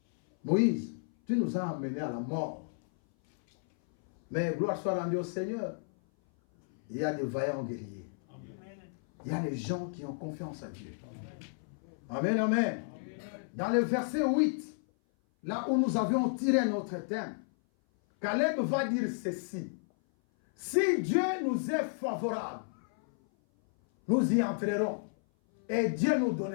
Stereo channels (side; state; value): right; silent; 56 dB below the other